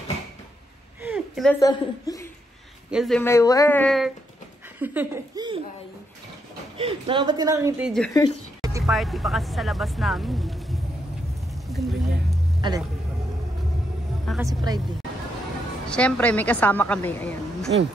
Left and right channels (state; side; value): normal; both; correlation 0.79